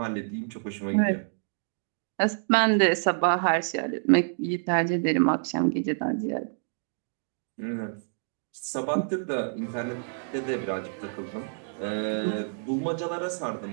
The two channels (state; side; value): silent; left; digital silence